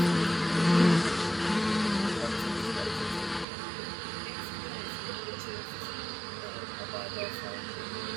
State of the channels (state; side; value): drops out; left; at 3.5 s